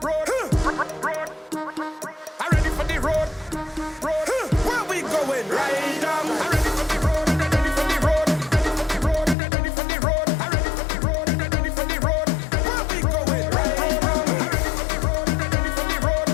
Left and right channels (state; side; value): drops out; right; at 9.3 s